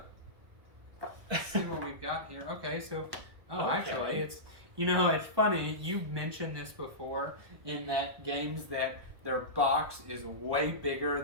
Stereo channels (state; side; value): late; left; 1.2 ms